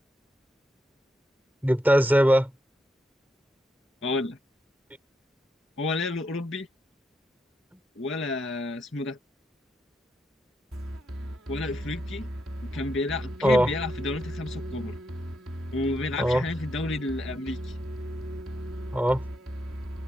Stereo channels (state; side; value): normal; both; correlation 0.82